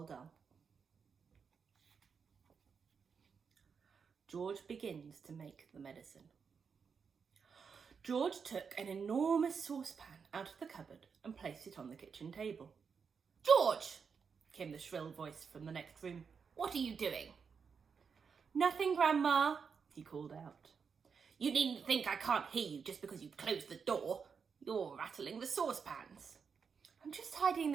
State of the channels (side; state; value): left; quieter; 6.0 dB